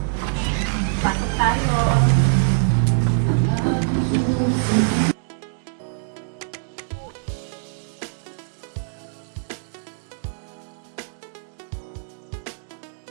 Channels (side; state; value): left; silent; digital silence